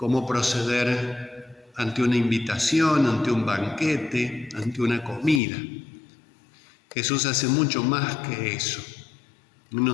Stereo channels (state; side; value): drops out; right; at 5.4 s